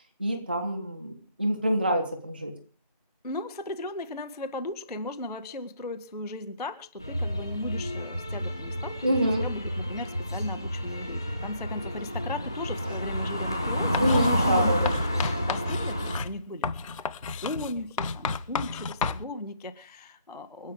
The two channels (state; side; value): inverted; both; correlation -0.68